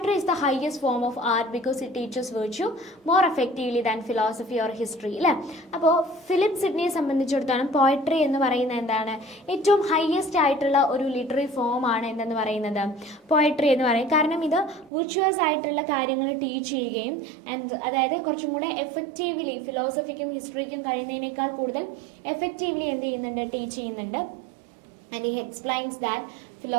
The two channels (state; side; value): drops out; left; at 14.9 s